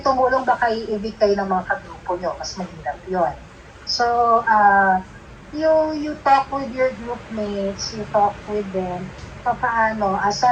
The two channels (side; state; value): both; identical; correlation 1.00